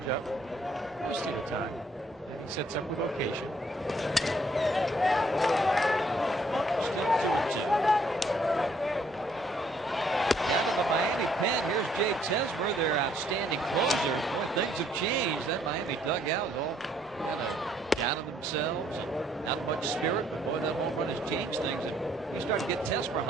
Just at a time. And he sets up with location. Still 2-2. Down to the Miami pen. Here's Jay Tesmer, their outstanding closer. Boy, things have changed. That Miami dugout is all kind of down on themselves and not much spirit. But boy, that home run has changed things. And you start to get Tesmer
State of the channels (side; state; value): both; normal; correlation 0.66